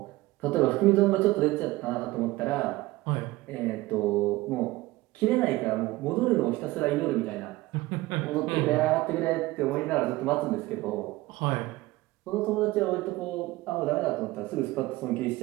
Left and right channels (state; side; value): quieter; left; 19.0 dB